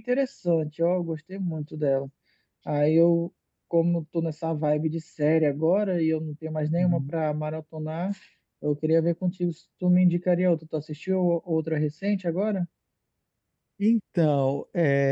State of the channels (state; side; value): identical; both; correlation 1.00